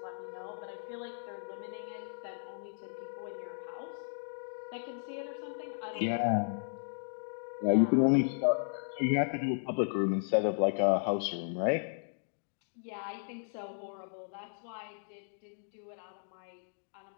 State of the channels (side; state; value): right; silent; digital silence